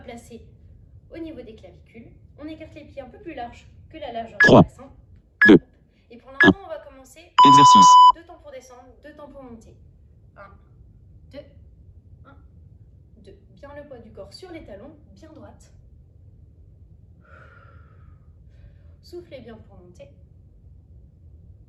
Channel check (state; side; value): identical; both; correlation 1.00